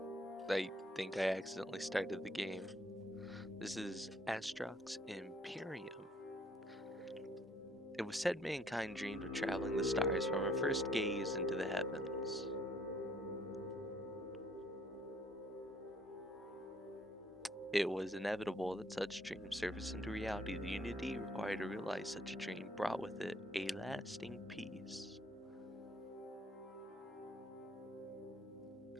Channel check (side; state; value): both; normal; correlation 0.64